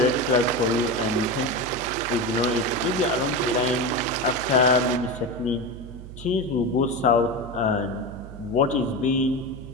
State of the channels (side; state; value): right; noise; hum, 13 dB below the sound